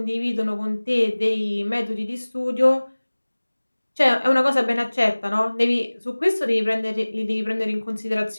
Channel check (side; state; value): both; inverted; correlation -1.00